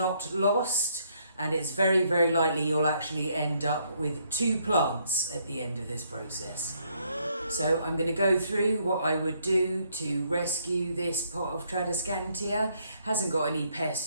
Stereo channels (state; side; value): inverted; both; correlation -0.71